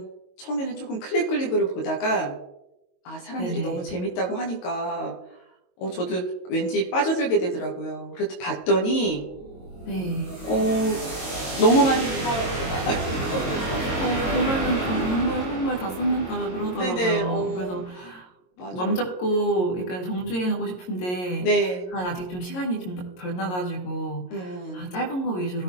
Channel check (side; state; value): right; late; 22 ms